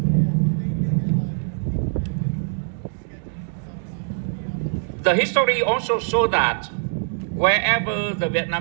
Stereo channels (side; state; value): left; silent; digital silence